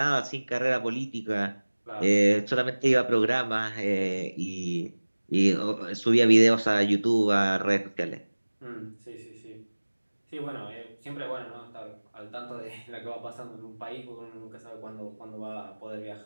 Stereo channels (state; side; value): inverted; both; correlation -1.00